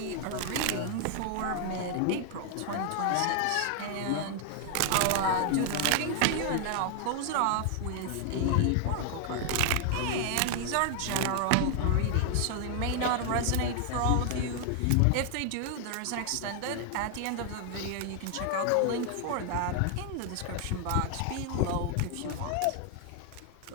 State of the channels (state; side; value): different; both; correlation 0.00